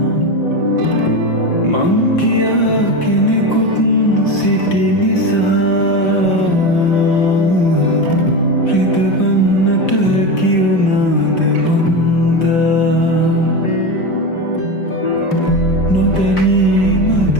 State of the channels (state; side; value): late; right; 5.7 ms